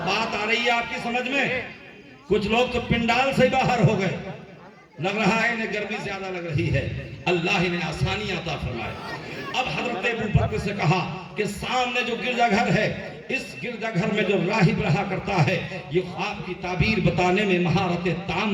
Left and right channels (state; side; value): identical; both; correlation 1.00